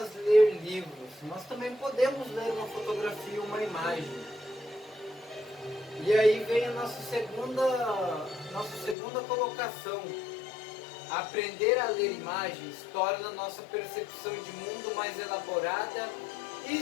ler livros, nós também podemos ler uma fotografia, uma imagem. E aí vem a nossa segunda colocação. Aprender a ler imagens torna nossa percepção de mundo mais elaborada e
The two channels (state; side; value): drops out; right; at 9.0 s